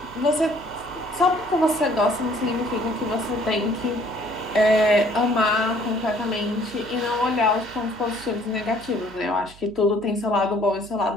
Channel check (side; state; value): right; noise; hum, 22 dB below the sound